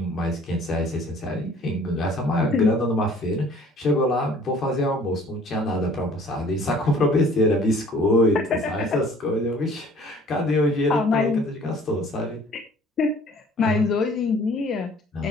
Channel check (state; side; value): normal; both; correlation 0.53